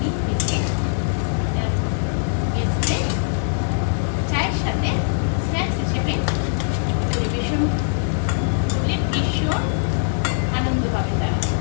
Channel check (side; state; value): right; silent; digital silence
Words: ভেজে গেস্টে চায়ের সাথে স্ন্যাক্স হিসেবে পরিবেশন করলে ভীষণ আনন্দ পাবে তারা।